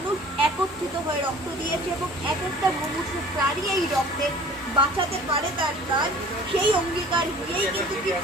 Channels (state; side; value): normal; both; correlation 0.47